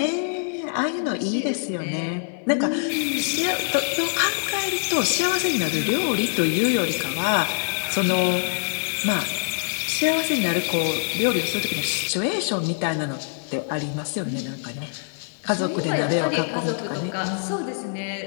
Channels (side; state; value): right; silent; 56 dB below the other